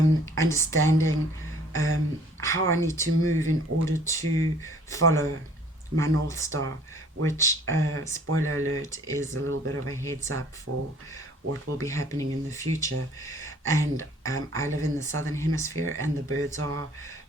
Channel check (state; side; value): normal; both; correlation 0.54